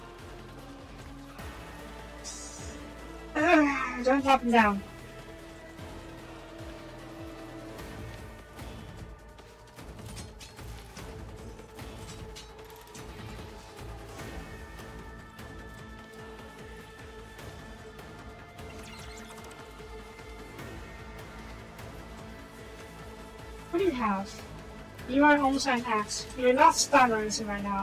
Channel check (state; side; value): identical; both; correlation 1.00